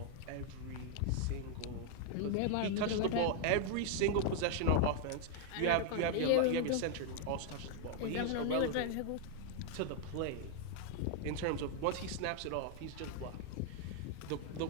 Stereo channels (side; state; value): both; different; correlation 0.00